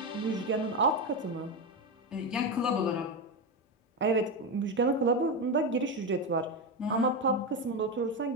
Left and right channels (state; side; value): normal; both; correlation 0.13